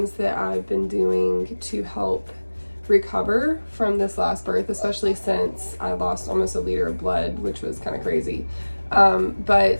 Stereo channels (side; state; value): both; inverted; correlation -1.00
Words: that I've been doing to help recover from this last birth, especially since I lost almost a liter of blood, which was kind of crazy.